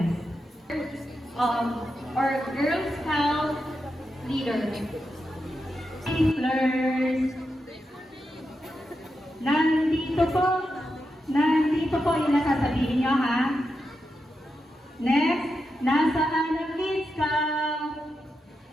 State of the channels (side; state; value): both; normal; correlation 0.87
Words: Or Girl Scout leader. Twinklers. Nandito po yung nasasabihin nyo, ha? Next, nasaan ang Kid Scout?